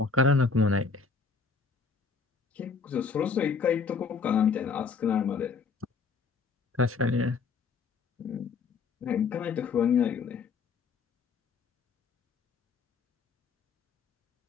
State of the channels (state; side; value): quieter; right; 5.2 dB